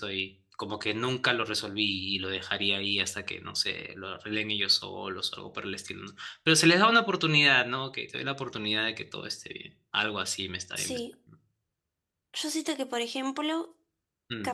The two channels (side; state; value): both; identical; correlation 1.00